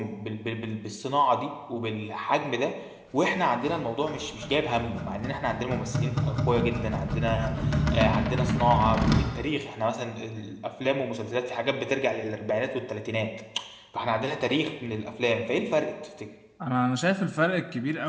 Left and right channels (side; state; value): both; identical; correlation 1.00